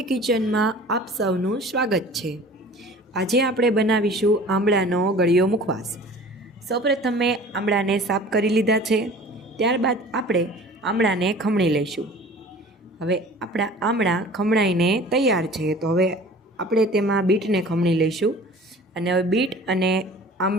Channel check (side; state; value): both; normal; correlation 0.44